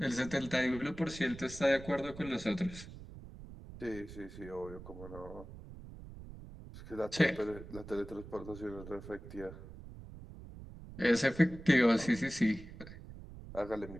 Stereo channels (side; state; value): right; noise; rumble, 14 dB below the sound